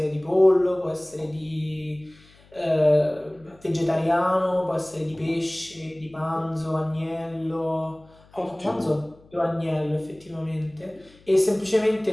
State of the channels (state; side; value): noise; left; hum, 27 dB below the sound